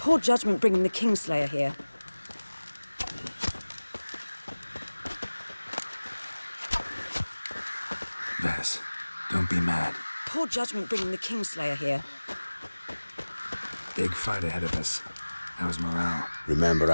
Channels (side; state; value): both; inverted; correlation -1.00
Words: judgment bringing the Kingslayer here. Vess, don't be mad. Poor judgment bringing the Kingslayer here. Big fight ahead of us. How's morale? Remember